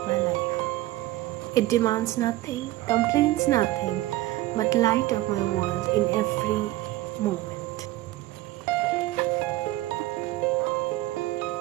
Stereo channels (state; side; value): quieter; left; 16.9 dB